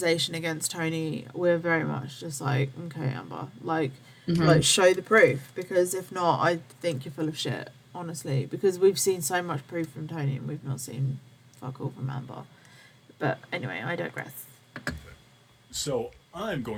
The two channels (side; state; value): both; identical; correlation 1.00